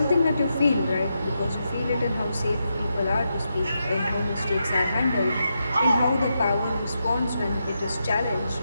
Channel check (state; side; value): inverted; both; correlation -0.85